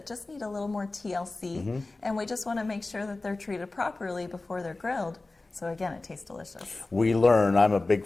just need a little more TLC, and we just want to make sure that they're treated properly before they're grilled. So again, it tastes delicious. We learn. I'm a big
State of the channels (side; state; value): right; quieter; 3.2 dB